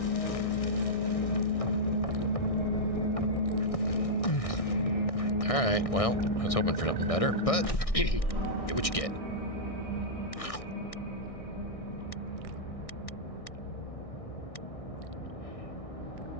that Alright, well, I was hoping for something better, but get what you get.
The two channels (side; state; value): right; late; 1.6 ms